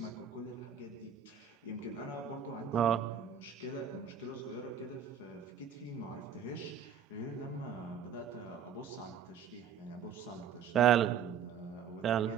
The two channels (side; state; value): left; quieter; 7.8 dB